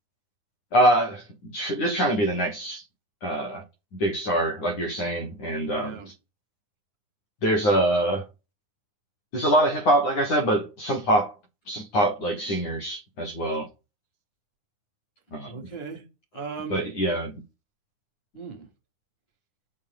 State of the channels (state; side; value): late; right; 9.8 ms